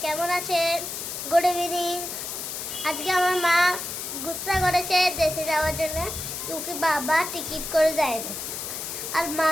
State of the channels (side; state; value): left; noise; hiss, 6 dB below the sound